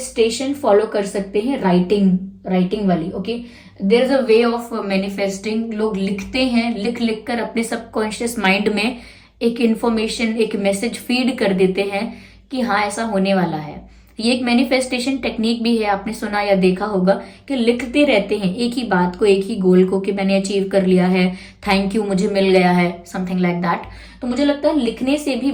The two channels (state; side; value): identical; both; correlation 1.00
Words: फॉलो कर सकते हैं, राइटिंग वाली। Okay, there is a way of manifesting. लोग लिखते हैं, लिख कर अपने सबकॉन्शियस माइंड में एक इंफॉर्मेशन, एक मैसेज फीड कर देते हैं कि हाँ ऐसा होने वाला है। ये एक मैनिफेस्टेशन टेक्निक भी है, आपने सुना या देखा होगा कि लिखते रहते हैं एक ही बात को, एक ही गोल को, कि मैंने अचीव कर लिया है, थैंक यू, मुझे मिल गया है, समथिंग लाइक दैट। तो मुझे लगता है लिखने से भी